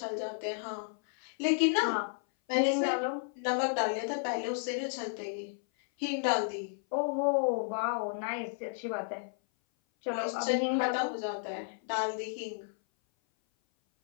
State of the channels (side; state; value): right; silent; 56 dB below the other